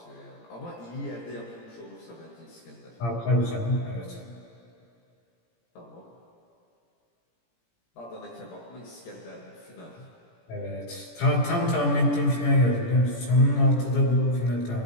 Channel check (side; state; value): right; late; 17 ms